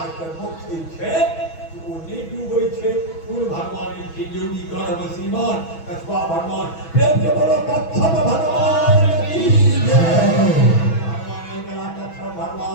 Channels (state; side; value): late; right; 6.1 ms